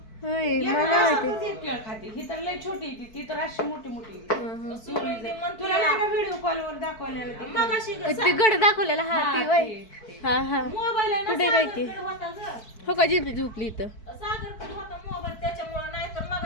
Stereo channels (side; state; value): right; late; 4.5 ms